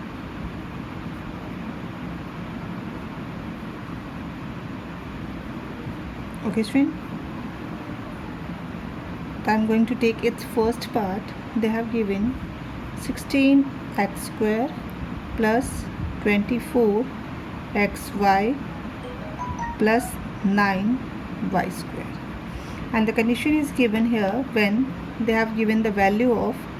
Okay student. I'm going to take its first part. They have given 16x square plus 24xy plus 9y square, and the condition is given here when they have given the value of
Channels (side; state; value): both; identical; correlation 1.00